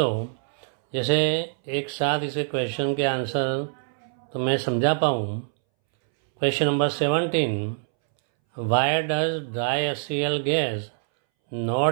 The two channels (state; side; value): silent; left; 62 dB below the other